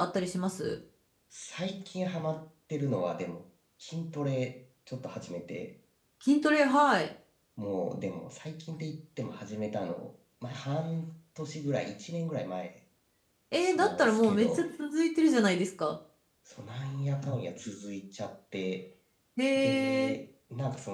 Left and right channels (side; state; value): both; identical; correlation 1.00